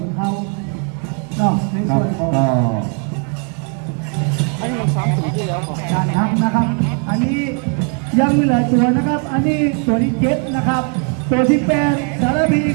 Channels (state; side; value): quieter; left; 39.6 dB